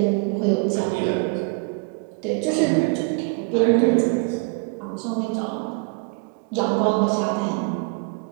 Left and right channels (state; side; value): quieter; left; 31.2 dB